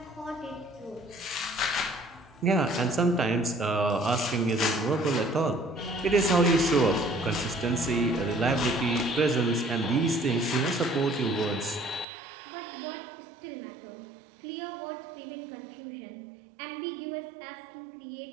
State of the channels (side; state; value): left; drops out; at 12.1 s